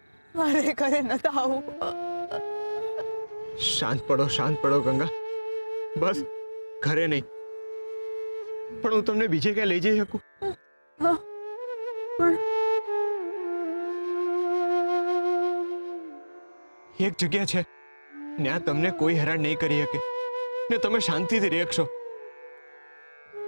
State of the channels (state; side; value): inverted; both; correlation -1.00